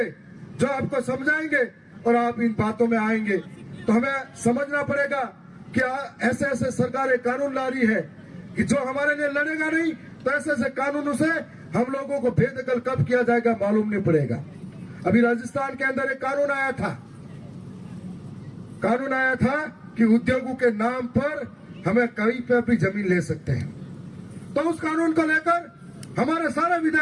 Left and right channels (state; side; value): identical; both; correlation 1.00